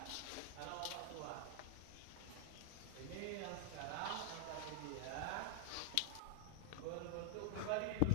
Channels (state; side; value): different; both; correlation -0.01